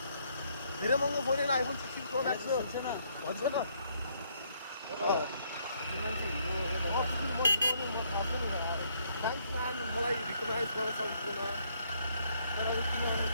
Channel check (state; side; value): inverted; both; correlation -0.70